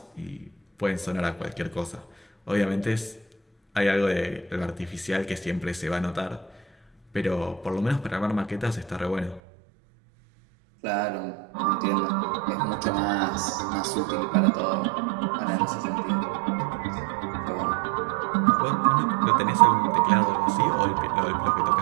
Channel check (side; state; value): left; drops out; at 9.4 s